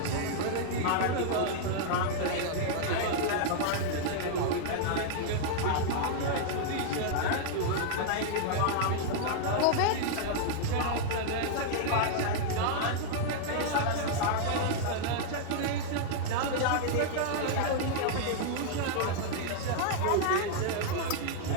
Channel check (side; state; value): both; different; correlation -0.01